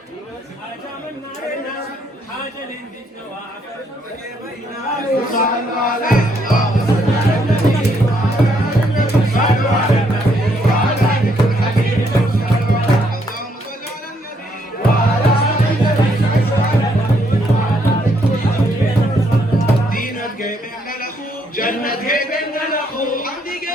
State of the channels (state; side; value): normal; both; correlation 0.72